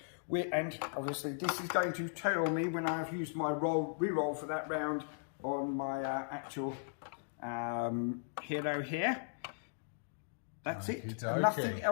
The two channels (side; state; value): right; silent; digital silence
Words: And obviously this is going to tell me when I've used my reroll for that round on my actual hero here. That's it. Okay. Nothing